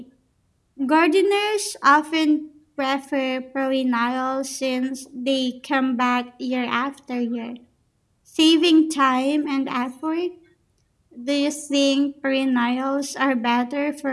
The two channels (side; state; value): both; identical; correlation 1.00